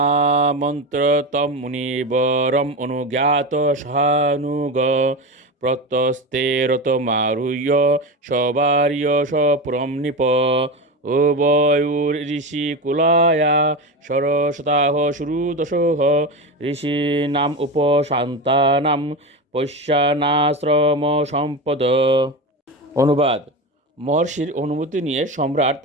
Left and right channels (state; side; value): normal; both; correlation 0.20